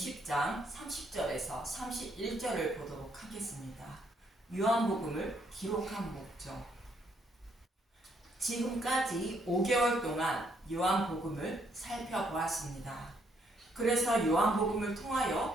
30절에서 31절을 보도록 하겠습니다. 요한복음을 기록한 목적. 지금까지 5개월 동안 요한복음을 살펴보았습니다. 그래서 요한복음을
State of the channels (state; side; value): normal; both; correlation 0.71